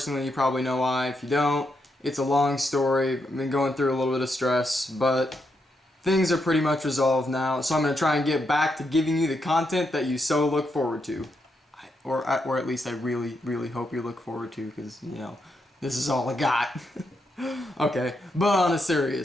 you probably know why. If you don't, it's a long story. I've been going through a little bit of stress, but things are pretty much resolved now, so I'm going to try and get back to giving you the content that you so look forward to. Or at least I really hope you look forward to, because, you know, this is all I got. Okay, but on a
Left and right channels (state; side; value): normal; both; correlation 0.81